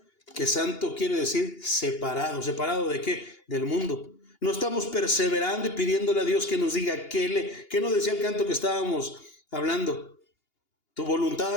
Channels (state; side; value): late; right; 2.8 ms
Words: Que santo quiere decir separado. ¿Separado de qué? Del mundo. No estamos perseverando y pidiéndole a Dios que nos diga ¿qué nos decía el canto que estábamos hablando? Tu voluntad